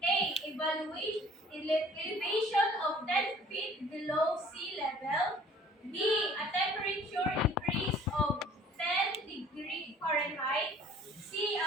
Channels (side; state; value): both; normal; correlation 0.52